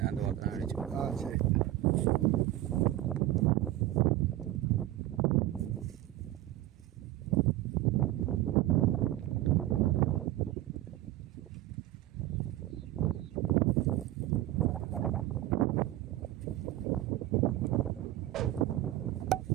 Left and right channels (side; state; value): left; quieter; 15.0 dB